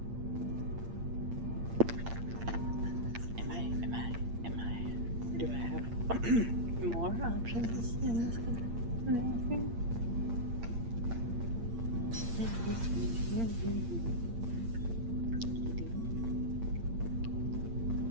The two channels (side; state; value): left; late; 8.7 ms